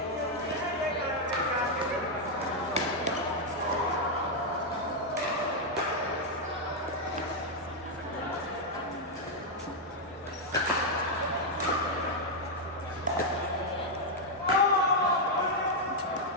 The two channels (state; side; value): normal; both; correlation -0.01